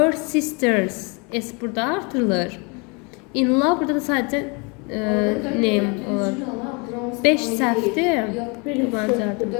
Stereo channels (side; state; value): right; quieter; 31.3 dB